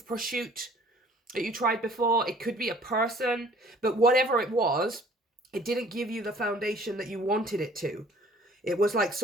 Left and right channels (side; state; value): both; normal; correlation 0.54